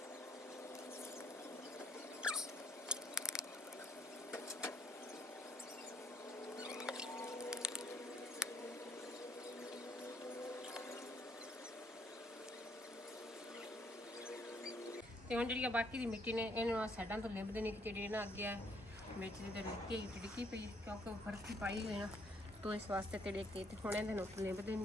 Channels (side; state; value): both; normal; correlation 0.68